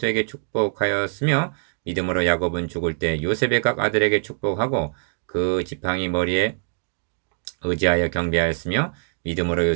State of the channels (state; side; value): silent; left; digital silence